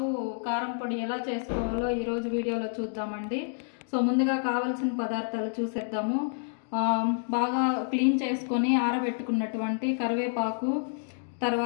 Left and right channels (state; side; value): silent; right; digital silence